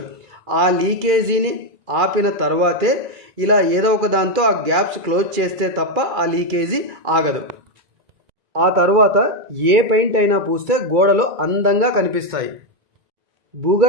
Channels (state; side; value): late; left; 2.3 ms